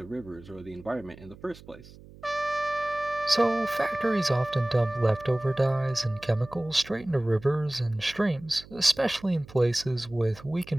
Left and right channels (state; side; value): noise; right; hum, 20 dB below the sound